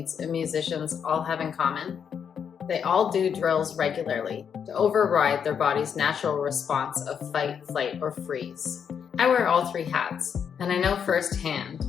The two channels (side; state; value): right; quieter; 7.5 dB